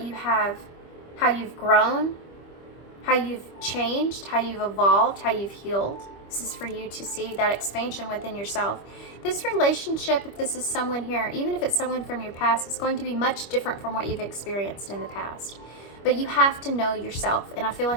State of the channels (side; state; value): right; late; 25 ms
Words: you have how you've grown, how you've changed, how you've evolved, how you've healed. This is for you to see that expansion within yourself. This relationship, if this is someone here, even if it's someone from your past, is going to be much different from what you've experienced in the past. But you have to know yourself, and I feel